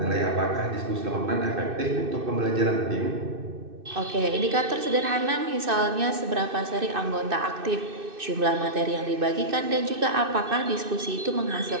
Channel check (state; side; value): late; left; 2.6 ms